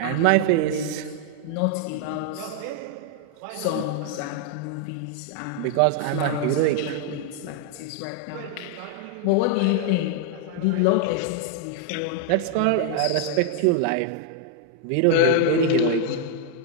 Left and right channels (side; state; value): both; different; correlation 0.00